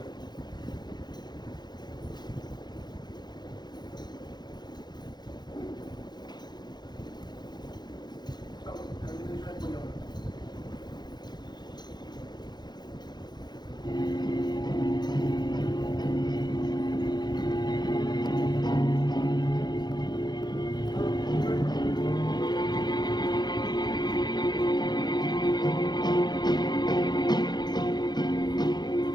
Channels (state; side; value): late; right; 0.21 ms